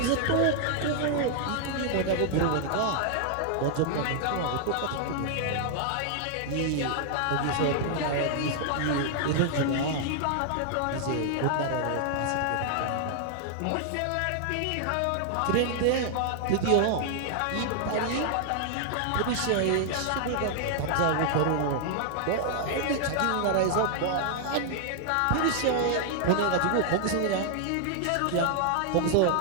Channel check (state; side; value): different; both; correlation 0.00